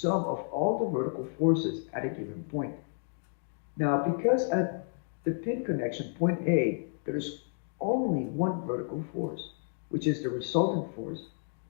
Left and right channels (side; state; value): right; silent; digital silence